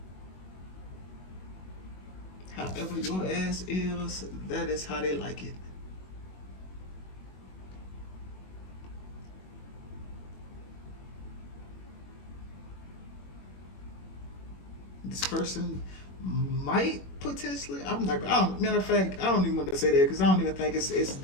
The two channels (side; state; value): right; late; 21 ms